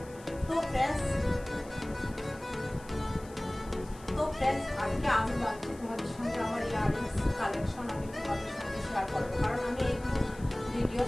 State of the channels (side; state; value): left; noise; hiss, 22 dB below the sound